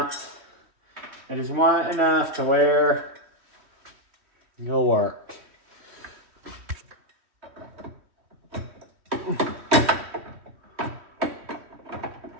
enough to where it'll work.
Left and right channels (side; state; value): left; late; 3.1 ms